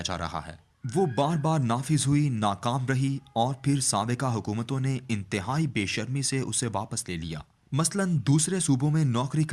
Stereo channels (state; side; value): identical; both; correlation 1.00